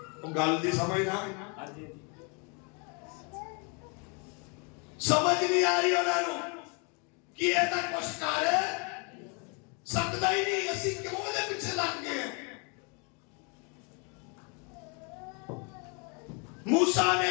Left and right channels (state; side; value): quieter; right; 34.8 dB